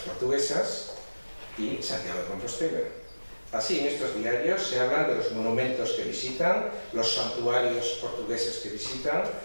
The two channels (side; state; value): both; inverted; correlation -1.00